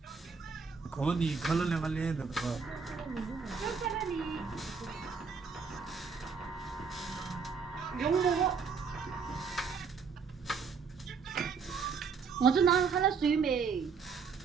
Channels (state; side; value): quieter; left; 5.5 dB